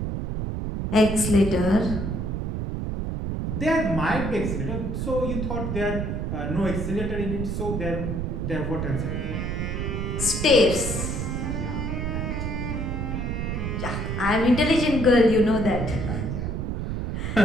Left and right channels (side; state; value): right; noise; rumble, 2 dB below the sound